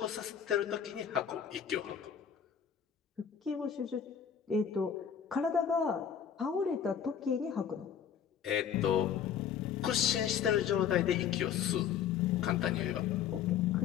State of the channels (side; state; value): right; quieter; 8.2 dB